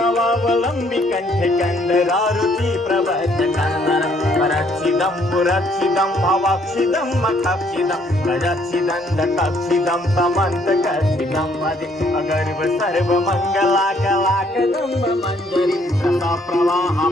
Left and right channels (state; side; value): normal; both; correlation 0.65